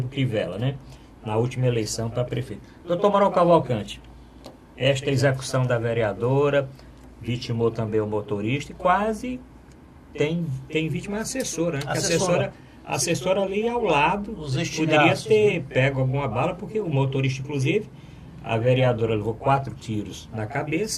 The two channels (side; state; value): both; identical; correlation 1.00